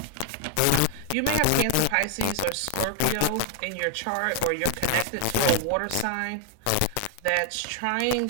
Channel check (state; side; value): different; both; correlation 0.00